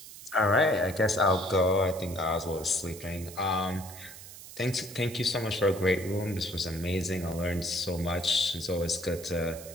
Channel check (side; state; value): right; noise; hiss, 15 dB below the sound